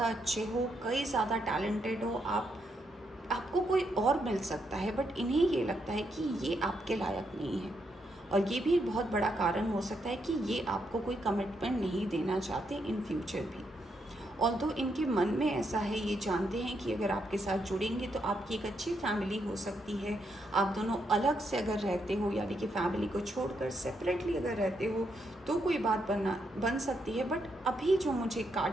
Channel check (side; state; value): both; normal; correlation 0.79